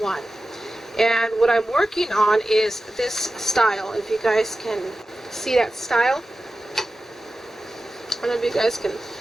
And what I'm working on is this style. If you guys can see that style. I don't know if you guys can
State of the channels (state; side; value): normal; both; correlation 0.94